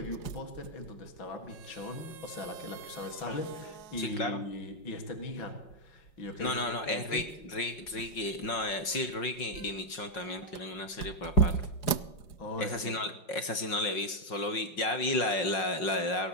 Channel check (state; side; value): late; right; 5.5 ms